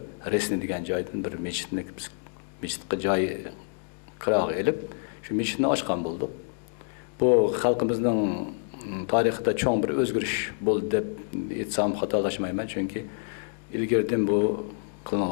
Resni degan joydan bir mescidga joy qirog'i elib, shu mescidni ochgan bo'ldik. Bu xalqimizning tarixida cho'ng bir o'zgarish bo'ldi deb aytsam xatolashmayman, chunki ilgaridan bu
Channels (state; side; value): silent; right; digital silence